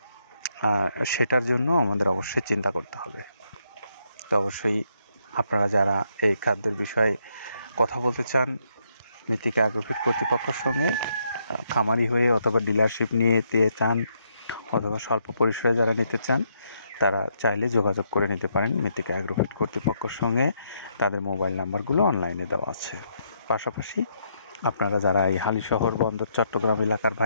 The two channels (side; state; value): both; inverted; correlation -0.75